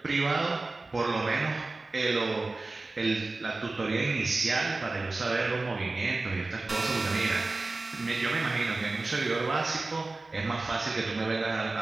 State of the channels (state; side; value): quieter; left; 3.4 dB